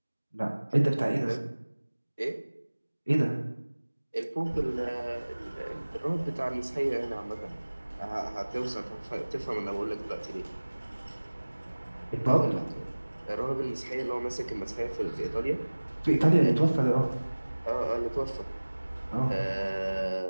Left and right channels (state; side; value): inverted; both; correlation -1.00